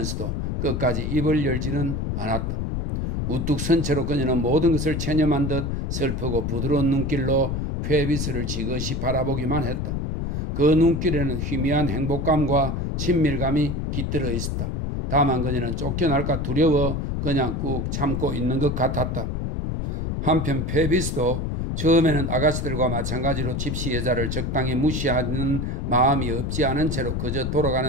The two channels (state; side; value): noise; left; rumble, 2 dB below the sound